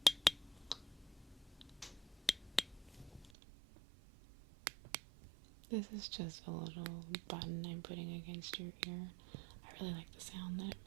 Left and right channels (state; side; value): drops out; left; at 3.3 s